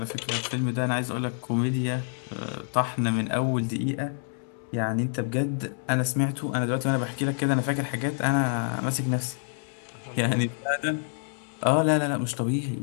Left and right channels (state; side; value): silent; right; digital silence